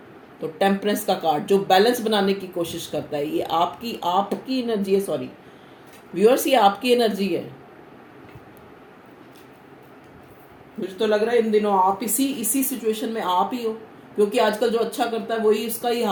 तो टेम्परेंस का कार्ड जो बैलेंस बनाने की कोशिश करता है, ये आपकी आपकी एनर्जी है, सॉरी व्यूअर्स, ये आपकी एनर्जी है। मुझे तो लग रहा है इन दिनों आप इसी सिचुएशन में आप ही हो, क्योंकि आजकल जो अच्छा करता है वही इसका ही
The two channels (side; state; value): both; identical; correlation 1.00